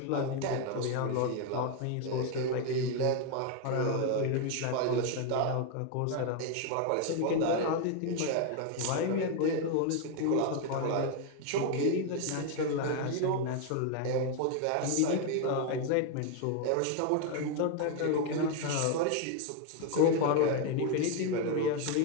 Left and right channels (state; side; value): different; both; correlation 0.01